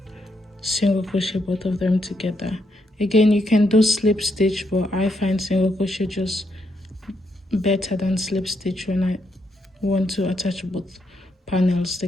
single crochet both of them together. Again, you can do slip stitch, but I find single crochet just better than slip stitch when I want to attach both panels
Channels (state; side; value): normal; both; correlation 0.78